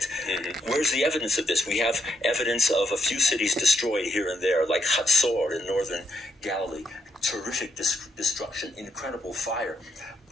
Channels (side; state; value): both; normal; correlation 0.77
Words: Where's the evidence of this? We have evidence of a few cities destroyed here and there, like Hatzor in northern Galilee. Terrific destruction, incredible fire.